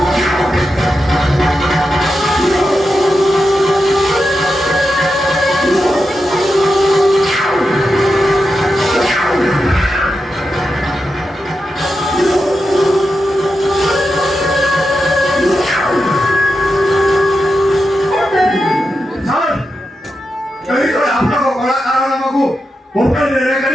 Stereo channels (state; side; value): normal; both; correlation 0.88